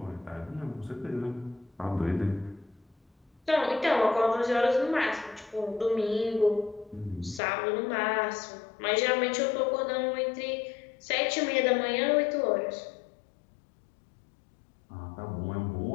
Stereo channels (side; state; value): right; drops out; at 7.4 s